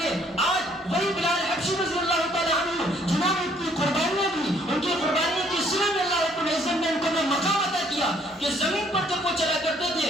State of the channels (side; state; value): both; normal; correlation 0.64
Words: ہے. آج وہی بلال حبشی رضی اللہ تعالی عنہ جنہوں نے اتنی قربانیاں دی، ان کی قربانیوں کی صلہ میں اللہ رب العزت نے ان کو مقام عطا کیا کہ زمین پر جب وہ چلا کرتے تھے